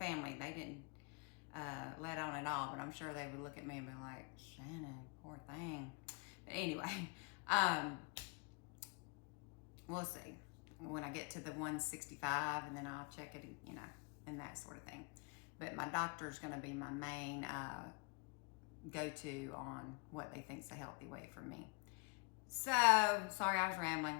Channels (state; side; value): quieter; right; 32.0 dB